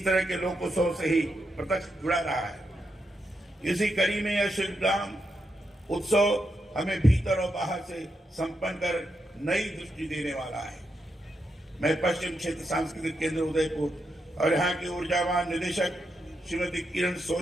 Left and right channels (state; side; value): normal; both; correlation 0.84